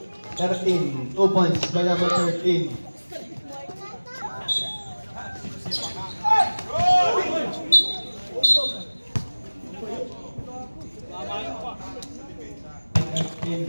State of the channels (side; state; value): both; inverted; correlation -1.00